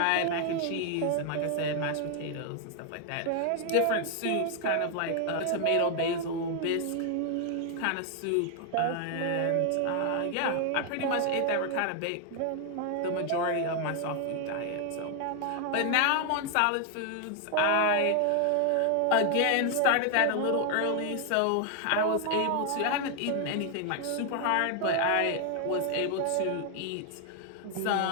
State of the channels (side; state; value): both; different; correlation 0.00